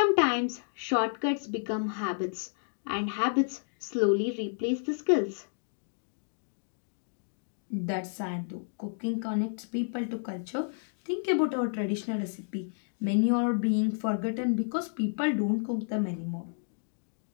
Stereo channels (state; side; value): silent; right; digital silence